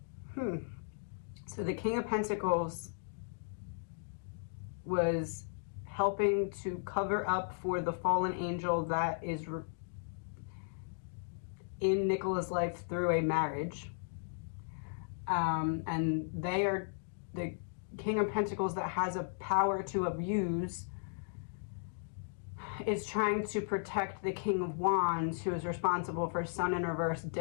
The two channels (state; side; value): silent; right; digital silence